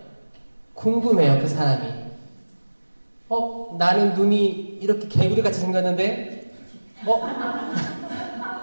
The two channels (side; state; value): both; inverted; correlation -1.00